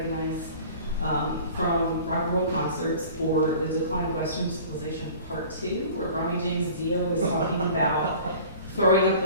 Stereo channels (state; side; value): inverted; both; correlation -0.44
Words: from rock and roll concerts, or The Decline of Western Civilization Part 2, where Ronnie James Dio was talking about throwing up